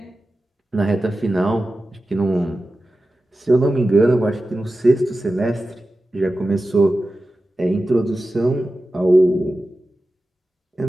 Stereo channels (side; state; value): both; normal; correlation 0.94